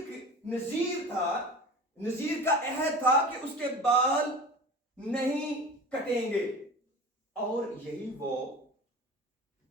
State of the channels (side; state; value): both; normal; correlation 0.35